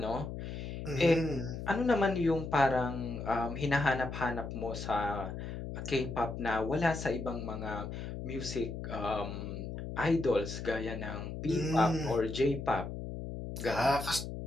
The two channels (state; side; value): noise; left; hum, 7 dB below the sound